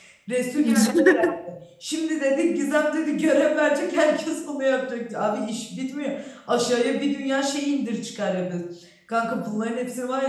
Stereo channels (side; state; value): both; identical; correlation 1.00